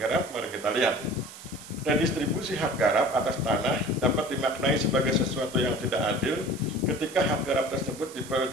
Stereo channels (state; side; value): noise; right; hiss, 16 dB below the sound